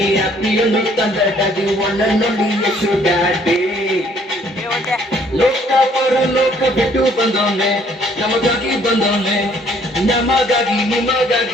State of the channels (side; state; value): both; normal; correlation 0.62